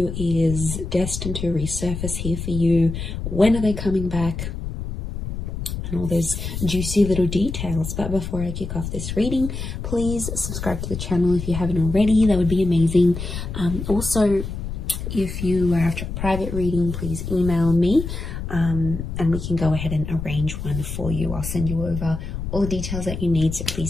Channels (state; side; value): noise; left; rumble, 6 dB below the sound